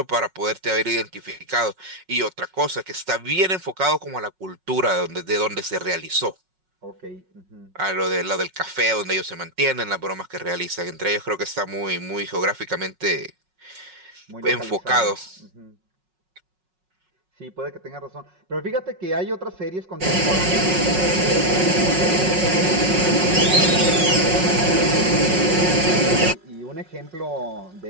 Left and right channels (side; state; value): left; late; 5.4 ms